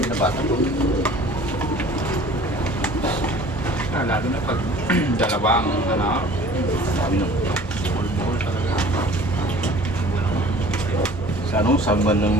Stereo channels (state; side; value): normal; both; correlation 0.48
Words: binabata ko. Lalo na pag dalawang ano, Sabi no. buhol-buhol talaga. Sa ano, sa buwan lang